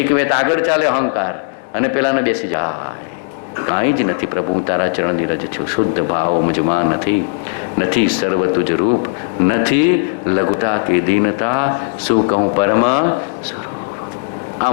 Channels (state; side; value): silent; right; 66 dB below the other